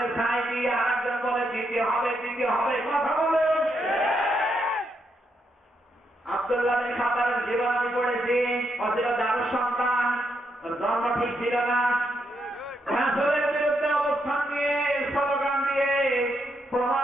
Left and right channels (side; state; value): both; normal; correlation 0.79